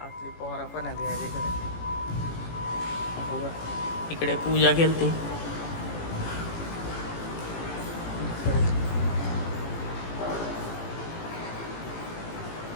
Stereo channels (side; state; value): right; late; 18 ms